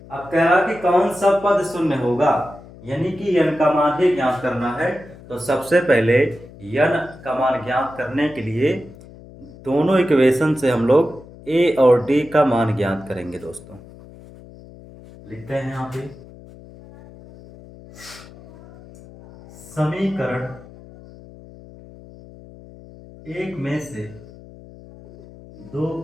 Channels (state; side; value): noise; left; hum, 20 dB below the sound